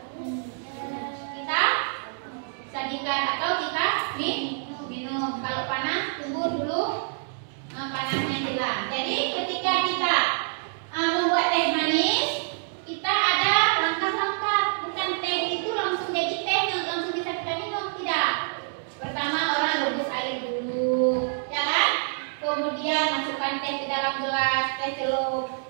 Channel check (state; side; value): silent; left; digital silence